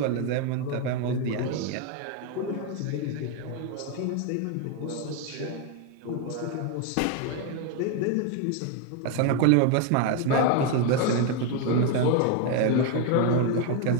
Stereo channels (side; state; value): both; different; correlation 0.01